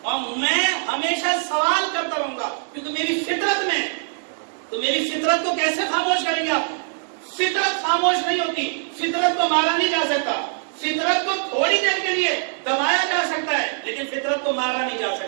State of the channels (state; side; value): silent; left; digital silence